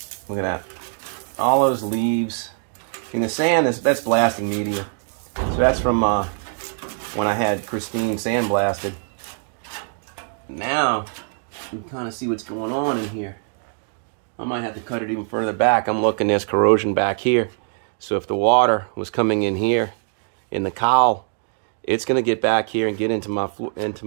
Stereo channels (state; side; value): silent; left; 64 dB below the other